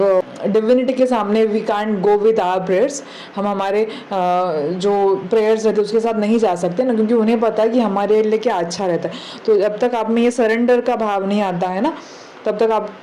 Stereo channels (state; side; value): identical; both; correlation 1.00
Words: डिविनिटी के सामने we can't go with our prayers, हम हमारे जो प्रेयर्स रहते हैं उसके साथ नहीं जा सकते ना, क्योंकि उन्हें पता है कि हमारे लिए क्या अच्छा रहता है। तो जब तक आप में ये सरेंडर का भाव नहीं आता है ना तब तक